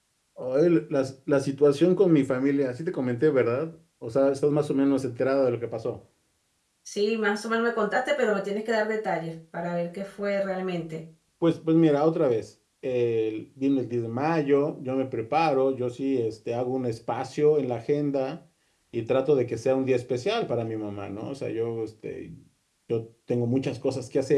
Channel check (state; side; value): identical; both; correlation 1.00